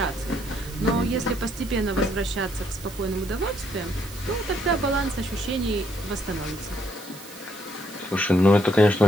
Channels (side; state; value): right; noise; hiss, 17 dB below the sound